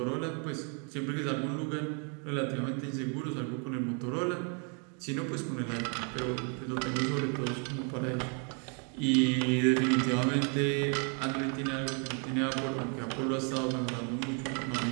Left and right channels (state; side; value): quieter; left; 38.1 dB